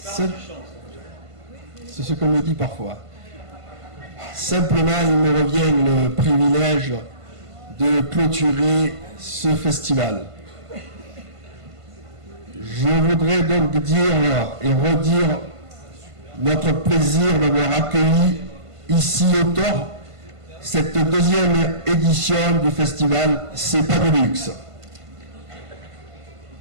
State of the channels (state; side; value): late; left; 1.5 ms